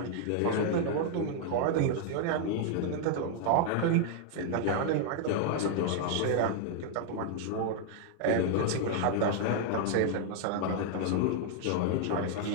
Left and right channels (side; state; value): both; different; correlation 0.00